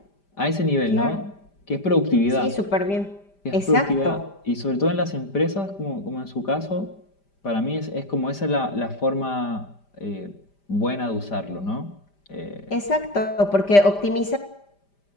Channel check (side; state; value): right; late; 5.0 ms